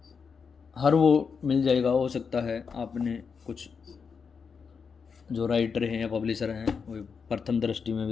हर वो मिल जाएगा, हो सकता है आपने कुछ जो राइटर हैं या पब्लिशर हैं वो प्रथम दृष्टि में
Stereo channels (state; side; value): quieter; right; 5.8 dB